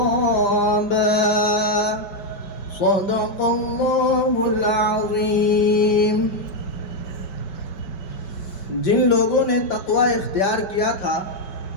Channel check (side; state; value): right; late; 5.2 ms